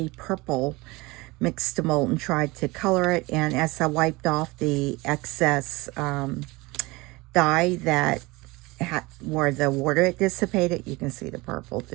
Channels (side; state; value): left; quieter; 22.9 dB